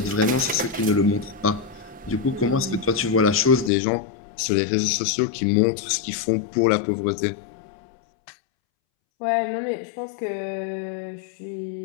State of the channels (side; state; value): right; drops out; at 3.7 s